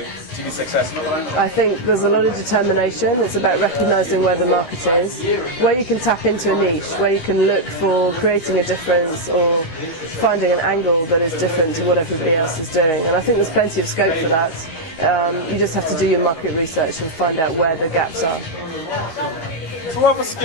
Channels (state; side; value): late; right; 13 ms